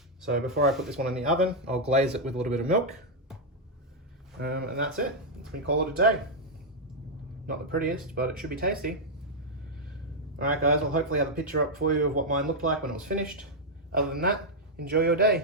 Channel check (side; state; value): both; normal; correlation -0.03